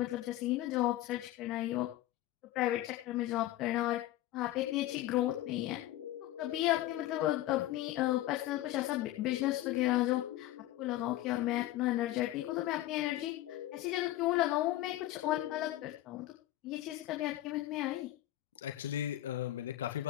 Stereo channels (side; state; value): right; quieter; 15.0 dB